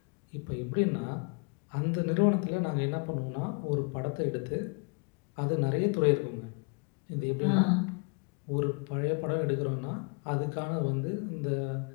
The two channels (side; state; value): right; quieter; 34.8 dB